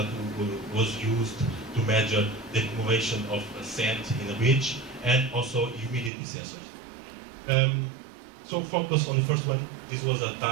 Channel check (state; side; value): drops out; left; at 6.1 s